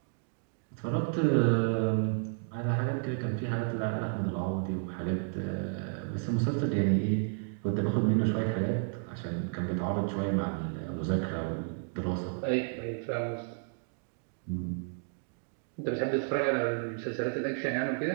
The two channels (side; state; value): left; silent; 56 dB below the other